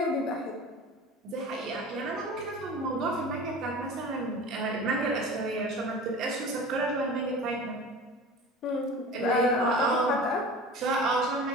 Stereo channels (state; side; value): normal; both; correlation 0.37